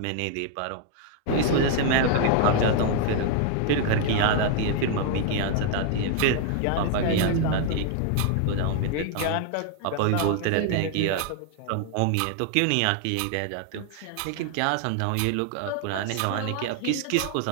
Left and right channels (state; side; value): different; both; correlation 0.00